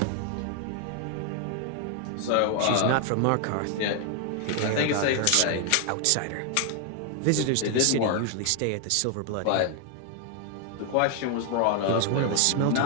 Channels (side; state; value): both; different; correlation 0.00